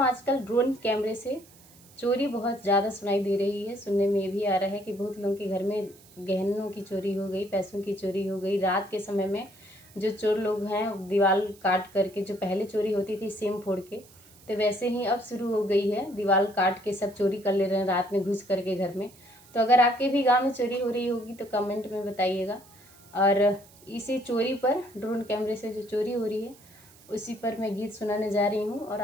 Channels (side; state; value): right; noise; hiss, 25 dB below the sound